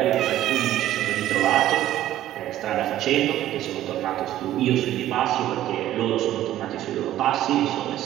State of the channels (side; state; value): left; quieter; 13.2 dB